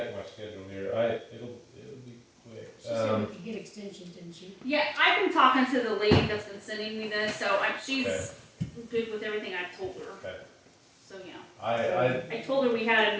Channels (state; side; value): identical; both; correlation 1.00